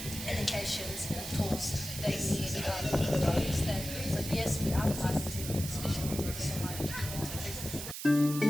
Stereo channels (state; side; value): noise; right; hiss, 7 dB below the sound